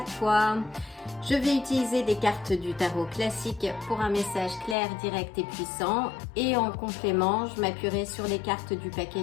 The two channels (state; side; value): drops out; right; at 4.8 s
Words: toi? Je vais utiliser des cartes du tarot classique pour un message clair, direct et puissant. Et en complément, je m'appuierai sur les cartes du